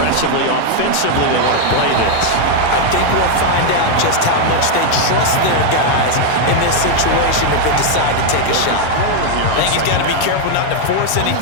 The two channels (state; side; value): different; both; correlation 0.00